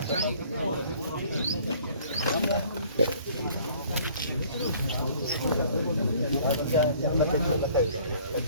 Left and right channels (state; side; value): inverted; both; correlation -0.55